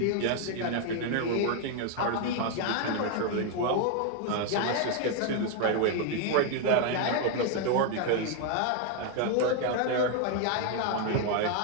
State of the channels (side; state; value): both; different; correlation 0.01